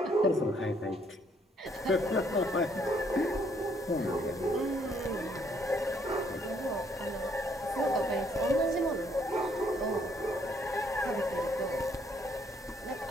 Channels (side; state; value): both; normal; correlation 0.68